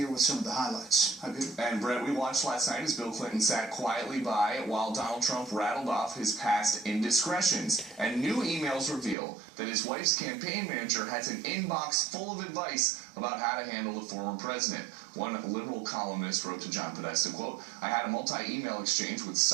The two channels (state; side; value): drops out; left; at 9.2 s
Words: with some of the highlights. Hi, Peter. And Brett, we watched last night as Bill Clinton sat quietly by while Donald Trump rattled off his past indiscretions. And new emails reveal that his wife's campaign manager has an inbox full of advice about how to handle the former president. One liberal columnist wrote to John Podesta, quote, "I had a multi-email exchange with